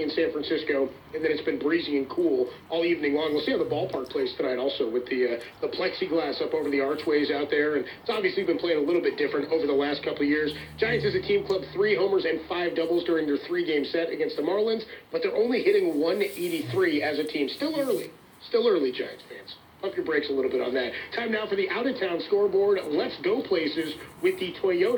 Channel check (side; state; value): both; identical; correlation 1.00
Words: in San Francisco, and then it's been breezy and cool all evening long. We'll see how the ballpark plays tonight also, with the plexiglass up over the archways out there, and it's obviously been playing a little bit different over the last couple of years. Giants as a team clubbed 3 homers and 5 doubles during their 3-game set against the Marlins, but they're only hitting 183 as a team. Still early, Giants fans. Pump your brakes a little bit on that. Time now for the out-of-town scoreboard. Let's go places with the